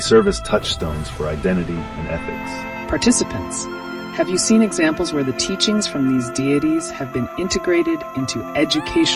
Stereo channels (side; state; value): both; identical; correlation 1.00